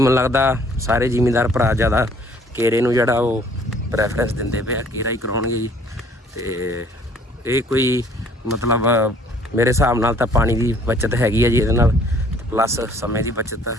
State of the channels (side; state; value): both; normal; correlation 0.58